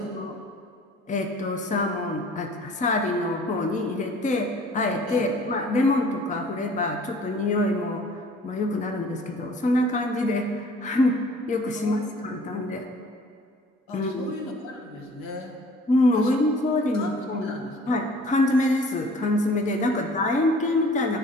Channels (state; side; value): normal; both; correlation 0.50